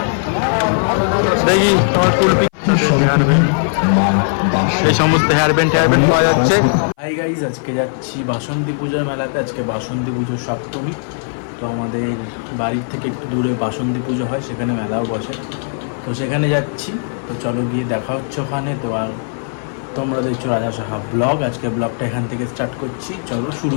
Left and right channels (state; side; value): silent; right; 58 dB below the other